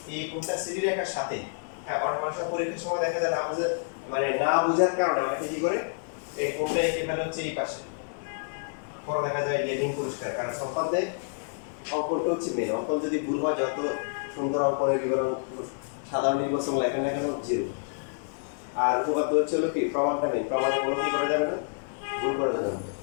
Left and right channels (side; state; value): right; silent; digital silence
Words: এই কোণটা সিডি রেখার সাথে, হ্যাঁ, অনেক মানুষের পরীক্ষার সময় দেখা যায় না বুঝে, মানে না বুঝার কারণে অনেকে কি করে এই কোণটা এঁকে ফেলে হচ্ছে এই পাশে, পরে দেখা যায় যে ঋণ পুরস্কার, কারণ সম্পাদ্যে অঙ্কনটা হচ্ছে মেন। অঙ্কন যদি ভুল হয়, যত সুন্দর অঙ্কনের বিবরণ সাধারণ নির্বাচন লেখেন না কেন, জিরো। আর উপপাদ্য হচ্ছে হলো কি, প্রমাণটা নেই, প্রমাণে কোনো কি করা যাবে না, ভুল করা যাবে না।